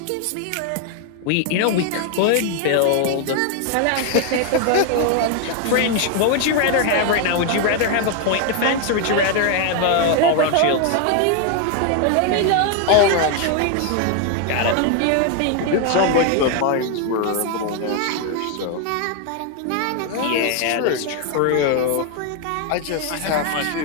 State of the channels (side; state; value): both; different; correlation 0.01